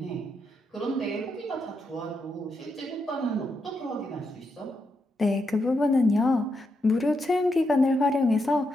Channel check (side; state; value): both; normal; correlation 0.82